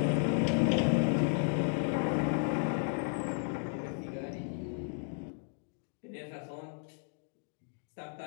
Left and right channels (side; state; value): right; silent; 55 dB below the other